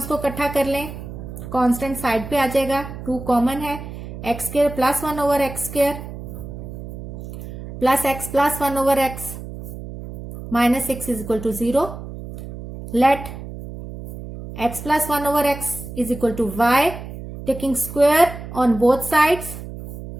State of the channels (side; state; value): right; noise; hum, 11 dB below the sound